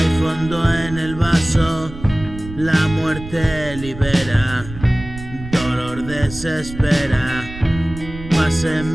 fondo en el vaso, la muerte libera, dolor desespera. Pasé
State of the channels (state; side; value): noise; right; rumble, 13 dB below the sound